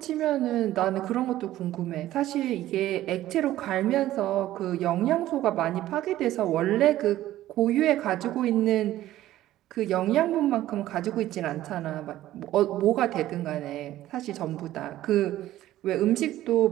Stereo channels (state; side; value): quieter; left; 14.3 dB